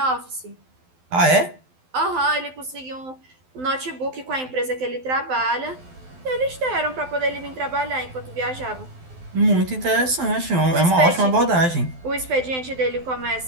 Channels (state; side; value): late; left; 12 ms